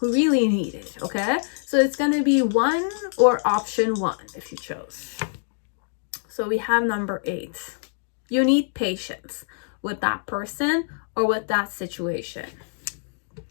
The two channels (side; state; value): right; silent; digital silence